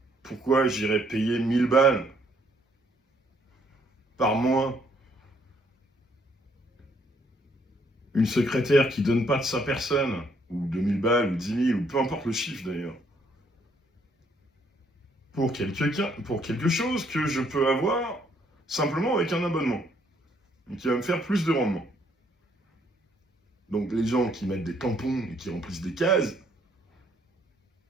Pourquoi j'irais payer 1000 balles par mois une secrétaire qui donne pas de sa personne, ou 2000 balles, ou 10 000, ou peu importe le chiffre d'ailleurs, pour quelque chose que je peux avoir simplement avec un abonnement, et qui va me faire plus de rendement. Donc les gens qui mettent des tampons et qui remplissent des cases,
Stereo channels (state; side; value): normal; both; correlation 0.68